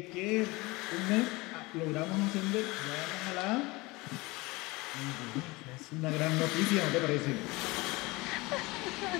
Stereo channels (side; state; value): right; quieter; 23.1 dB